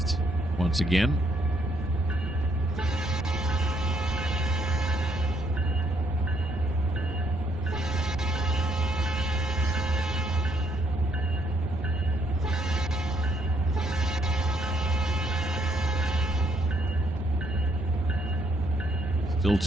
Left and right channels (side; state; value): both; normal; correlation 0.71